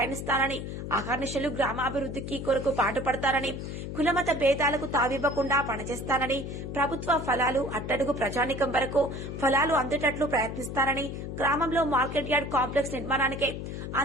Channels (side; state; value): left; noise; hum, 7 dB below the sound